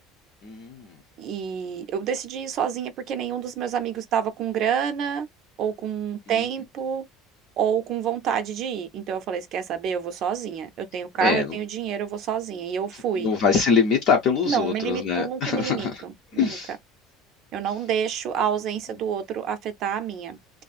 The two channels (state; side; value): normal; both; correlation 0.33